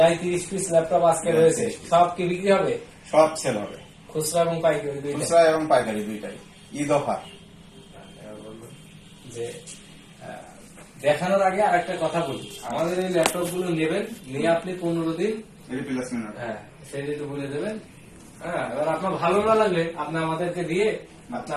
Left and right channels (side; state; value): both; identical; correlation 1.00